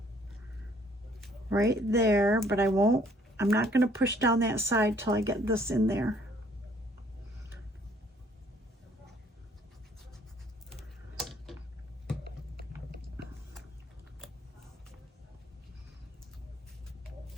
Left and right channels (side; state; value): both; normal; correlation 0.62